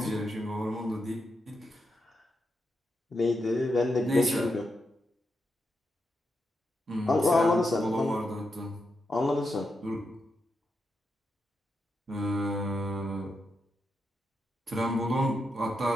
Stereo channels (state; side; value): normal; both; correlation 0.85